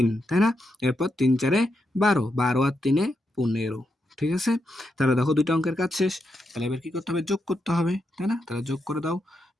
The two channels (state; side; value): normal; both; correlation 0.83